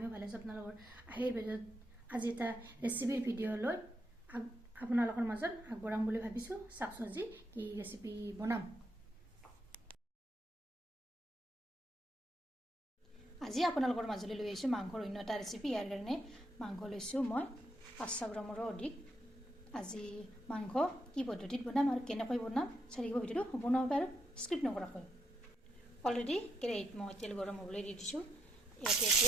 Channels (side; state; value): both; normal; correlation 0.78